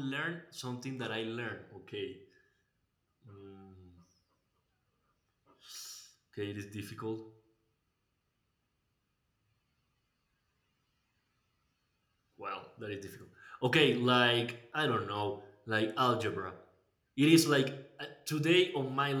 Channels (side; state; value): both; identical; correlation 1.00